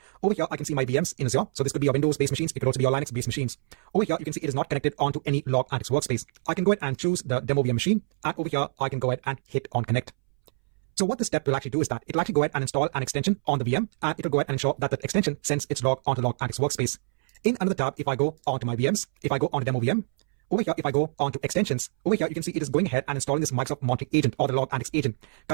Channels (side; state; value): left; silent; 61 dB below the other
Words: Over here, I can see my VMs in Azure. So this could be your Windows-based machines. It could also be your Linux-based machines. Over here, you can see it is not connected onto any Log Analytics workspace. I can go ahead and choose the demo VM machine. And over here, I can go ahead and hit on connect. So what this step will actually do is that it will actually go ahead and install an extension on the VM, and it will go ahead and ensure that that extension sends its log onto Log Analytics workspace. In another tab, if I go onto my VMs, if I go onto demo VM, over here, if I go onto extensions, over here, you can see it is going ahead and installing this Microsoft Monitoring Agent or the Log Analytics Agent.